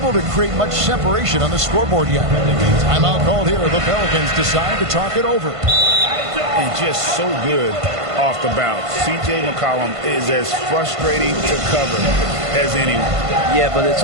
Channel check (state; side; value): late; left; 1.5 ms